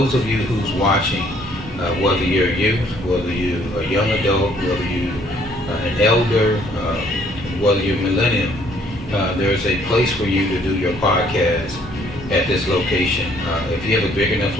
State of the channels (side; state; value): both; normal; correlation 0.63